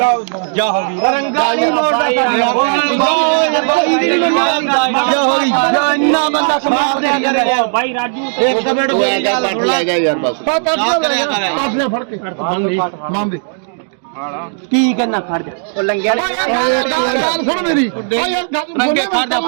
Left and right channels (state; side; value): silent; left; digital silence